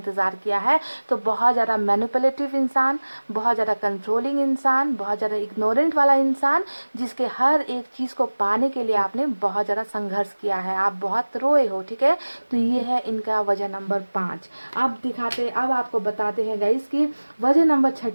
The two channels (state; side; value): inverted; both; correlation -1.00